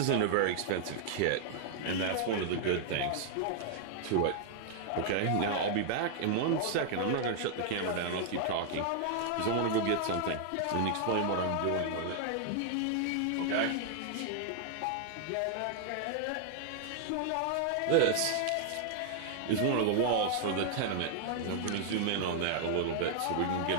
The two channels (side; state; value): both; different; correlation 0.00